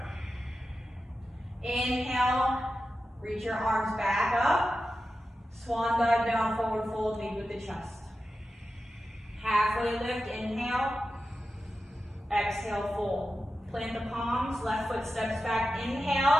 Inhale, reach your arms back up. Swan dive down, forward fold, lead with the chest. Halfway lift, inhale. Exhale, fold. Plant the palms, left foot steps back,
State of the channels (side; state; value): both; normal; correlation 0.92